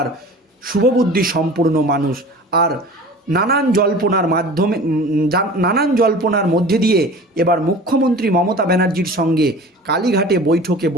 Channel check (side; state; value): both; normal; correlation 0.40